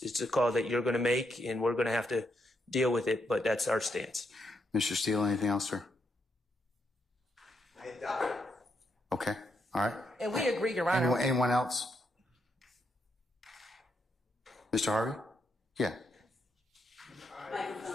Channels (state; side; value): normal; both; correlation 0.79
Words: a call that you're going to make, and we're going to have to deal with it. But that's our stance. Mr. Steele, anything else, sir? Okay. All right. And we agree, Your Honor. Anyone else? Mr. Harvey? Yeah.